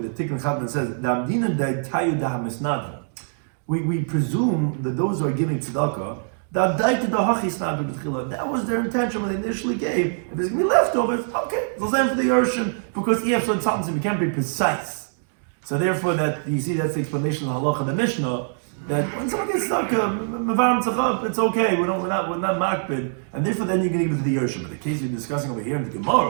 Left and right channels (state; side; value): silent; left; digital silence